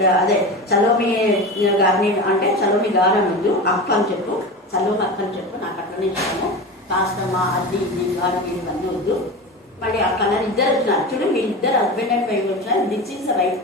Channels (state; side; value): normal; both; correlation 0.27